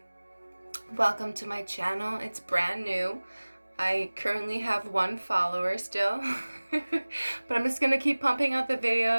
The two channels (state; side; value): inverted; both; correlation -1.00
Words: Welcome to my channel. It's brand new. I currently have 1 follower still, but I'm just gonna keep pumping out the